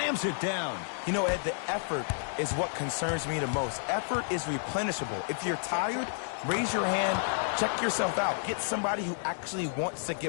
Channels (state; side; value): silent; right; digital silence